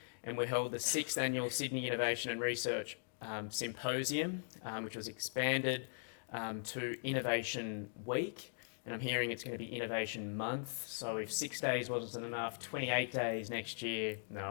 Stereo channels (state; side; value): silent; right; digital silence